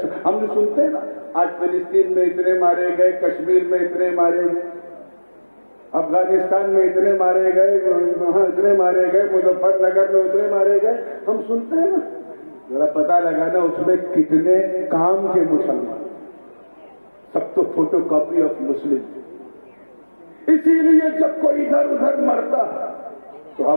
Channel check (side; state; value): both; inverted; correlation -1.00